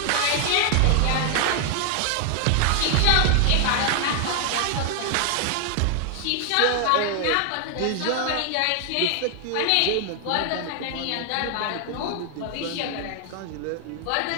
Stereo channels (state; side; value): different; both; correlation 0.00